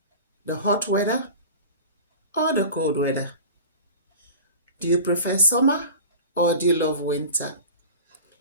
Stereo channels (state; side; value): inverted; both; correlation -0.36